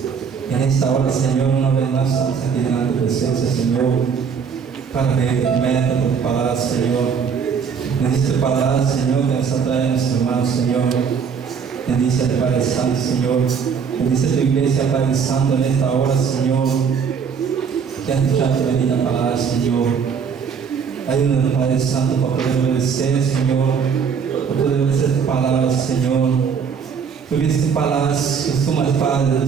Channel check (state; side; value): quieter; left; 6.5 dB